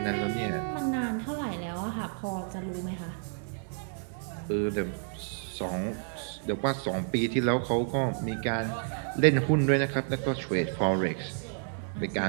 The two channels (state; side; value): silent; left; 58 dB below the other